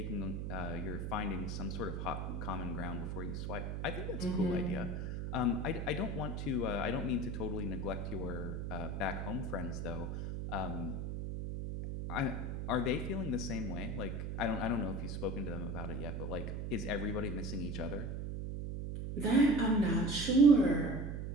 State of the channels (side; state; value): right; noise; hum, 3 dB below the sound